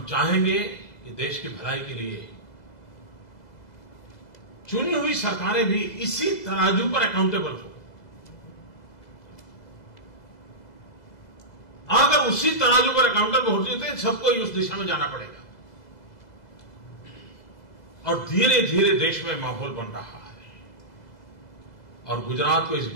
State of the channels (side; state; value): right; late; 2.0 ms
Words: चाहेंगे कि देश की भलाई के लिए चुनी हुई सरकारें भी इसी तराजू पर अकाउंटेबल हो। अगर उसी तराजू पर अकाउंटेबल होती है तो सबको ही उस दिशा में जाना पड़ेगा। और धीरे धीरे देश में माहौल बन रहा है। और गुजरात को इस